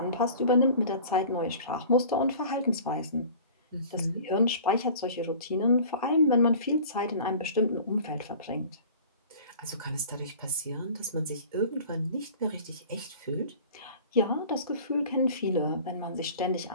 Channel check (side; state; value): both; inverted; correlation -0.43